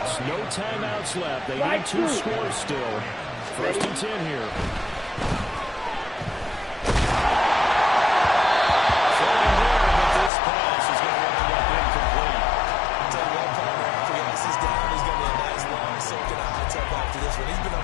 No timeouts left. They need 2 scores still. 1st and 10 here.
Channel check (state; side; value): drops out; right; at 10.3 s